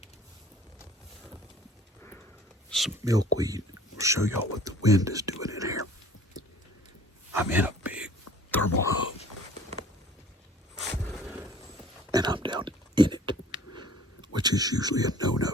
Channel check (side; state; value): both; normal; correlation 0.50